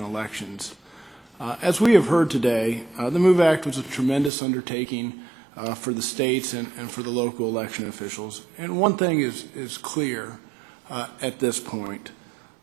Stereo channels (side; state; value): left; drops out; at 4.3 s